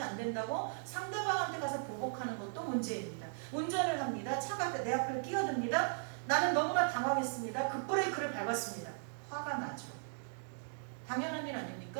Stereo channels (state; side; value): silent; left; digital silence